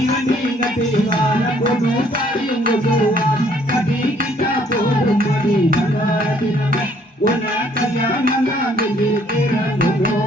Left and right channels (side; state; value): both; normal; correlation 0.63